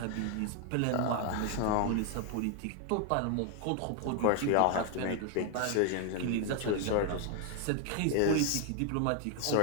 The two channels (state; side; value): different; both; correlation 0.00